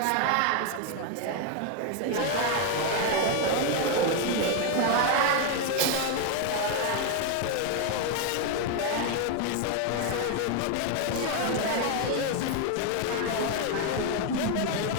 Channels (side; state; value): both; different; correlation 0.01